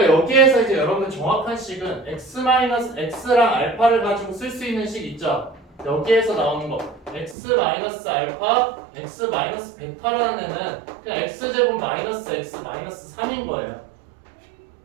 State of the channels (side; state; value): left; drops out; at 7.4 s